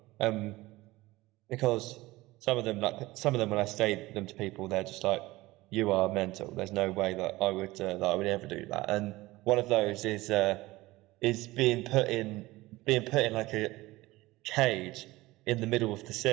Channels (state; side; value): quieter; left; 19.3 dB